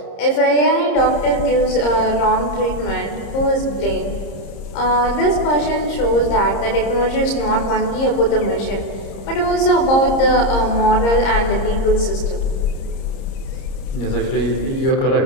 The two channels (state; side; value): late; right; 30 ms